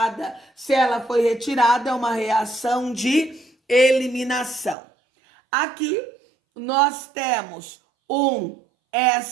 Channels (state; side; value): drops out; left; at 4.8 s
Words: Se ela foi retirada, é uma reação de eliminação. Aqui nós temos um